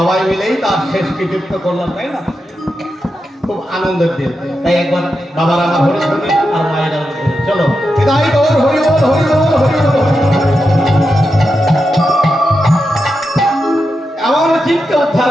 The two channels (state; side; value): normal; both; correlation 0.88